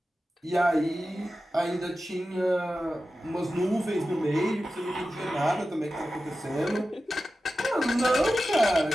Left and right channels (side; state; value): both; normal; correlation 0.93